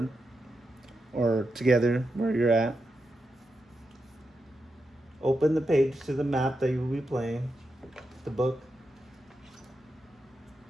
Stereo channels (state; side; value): normal; both; correlation 0.87